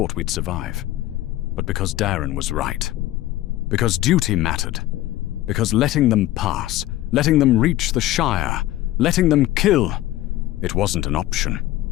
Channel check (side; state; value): right; quieter; 15.3 dB